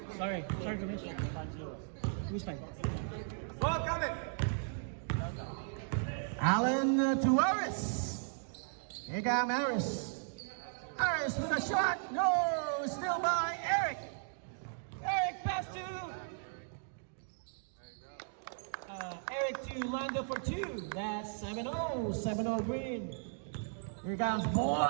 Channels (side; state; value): left; silent; digital silence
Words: Sorry, Commissioner. 5-0. Who's 5? Ball coming. Allen to Aris. Here comes Aris. Aris with a shot. No, still by Eric. Eric pass to Eric to Lando for 2. That's 7-0. 7-0 green. Here comes